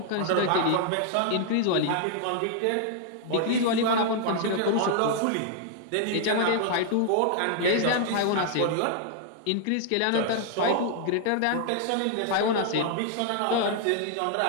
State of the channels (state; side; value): different; both; correlation 0.00